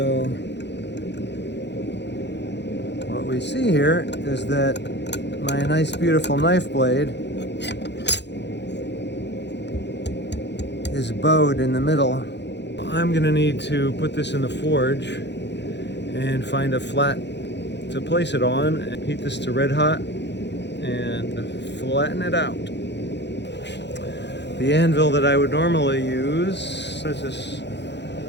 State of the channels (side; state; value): right; late; 0.50 ms